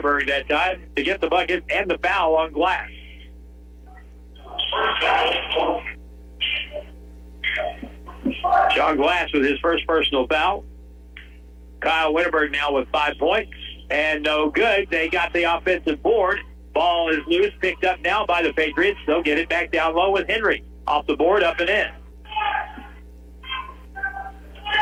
that time to get the bucket and the foul on Glass. Sean Glass with his first personal foul. Kyle Winterberg now with 5 points. And no good. They got the offensive board. Ball is loose, picked up now by the Patriots. They'll get it back down low with Henry. Off the board, up and in.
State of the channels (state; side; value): identical; both; correlation 1.00